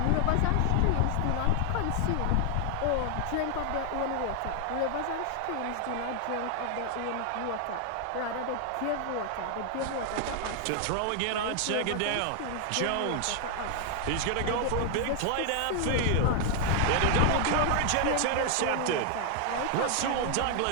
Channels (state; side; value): different; both; correlation 0.00